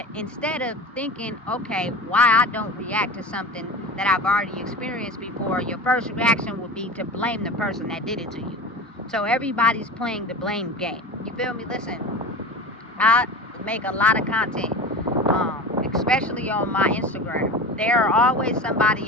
instead of thinking, okay, why I don't react to something that I've already experienced before, your first reaction would be to blame the person that did it to you. So everybody's playing the blame game. You feel me? Listen, I make a lot of content, especially on my Instagram. There are always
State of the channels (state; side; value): normal; both; correlation 0.31